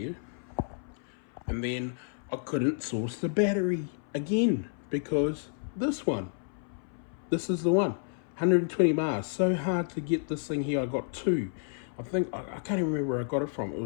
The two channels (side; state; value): right; silent; 57 dB below the other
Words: And then I couldn't source the battery again because this is the one. 120 miles. So hard to get this thing here. I got two. I think I can't even remember where I got it from.